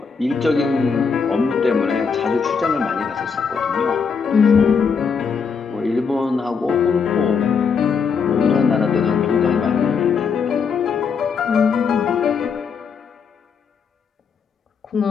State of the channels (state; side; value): quieter; right; 5.9 dB